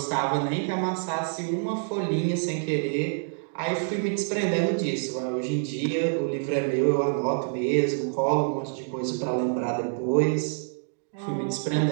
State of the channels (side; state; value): left; silent; digital silence